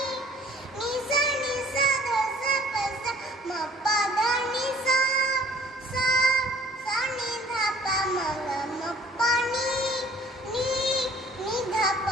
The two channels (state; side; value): normal; both; correlation 0.54